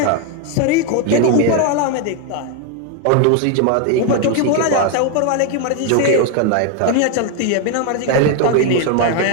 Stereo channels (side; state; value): both; different; correlation 0.01